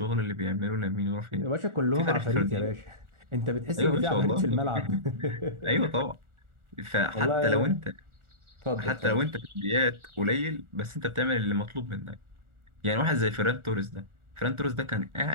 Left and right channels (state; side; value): late; left; 1.4 ms